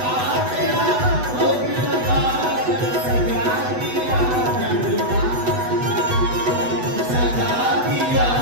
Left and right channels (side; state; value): left; late; 8.0 ms